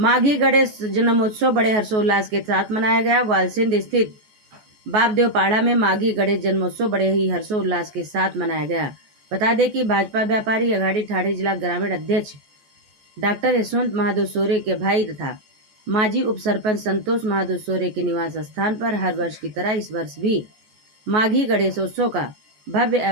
गणेश जन्मोत्सव बड़े हर्षोल्लास के साथ मनाया गया। वालसिंद स्थित बापदेव पहाड़ा में माघी गणेश जन्मोत्सव बड़े ही हर्षोल्लास के साथ मनाया गया। बता दें कि भाजपा व्यापारी अघाड़ी ठाणे जिला ग्रामीण अध्यक्ष डॉक्टर यशवंत महादेव सोरे के भाई तथा माजी उप सरपंच संतोष महादेव सोरे के निवास स्थान पर हर वर्ष की तरह इस वर्ष भी माघी गणेशोत्सव का भव्य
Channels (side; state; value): left; late; 14 ms